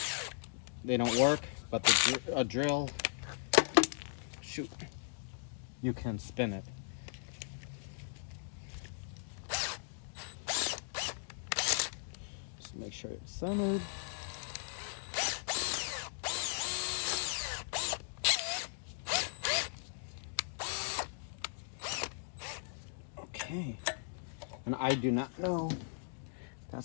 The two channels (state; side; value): silent; right; digital silence